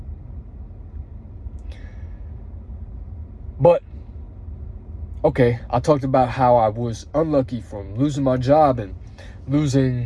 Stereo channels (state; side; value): identical; both; correlation 1.00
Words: But okay, I talked about how I was unlucky from losing my job and